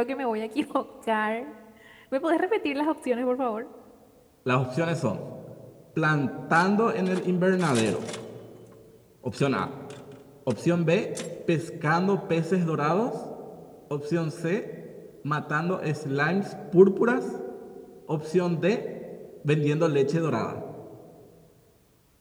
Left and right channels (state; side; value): identical; both; correlation 1.00